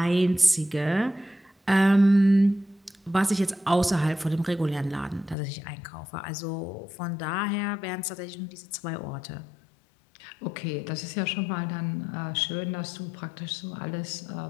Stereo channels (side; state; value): right; drops out; at 5.4 s